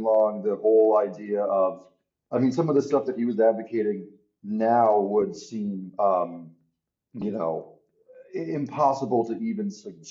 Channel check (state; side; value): identical; both; correlation 1.00